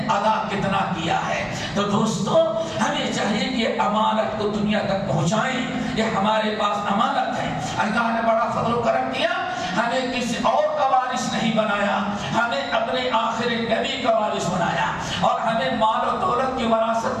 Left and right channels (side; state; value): both; identical; correlation 1.00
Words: ادا کتنا کیا ہے۔ تو دوستو ہمیں چاہیے کہ امانت کو دنیا تک پہنچائیں، یہ ہمارے پاس امانت ہے۔ اللہ نے بڑا فضل و کرم کیا، ہمیں کسی اور کا وارث نہیں بنایا، ہمیں اپنے آخر نبی کا وارث بنایا، اور ہمیں مال و دولت کی وراثت